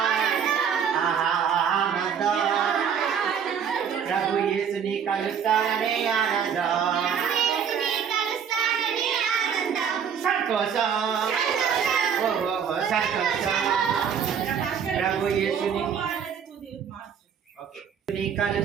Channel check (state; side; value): quieter; left; 7.6 dB